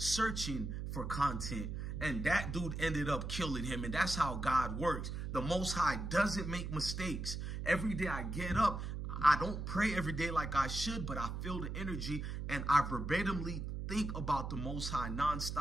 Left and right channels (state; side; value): noise; right; hum, 4 dB below the sound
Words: for content. And that dude ended up killing him. And that's how God works. The Most High doesn't make mistakes. Every day I get up, I don't pray every day like I should, but I feel the energy and I verbatimly think about the Most High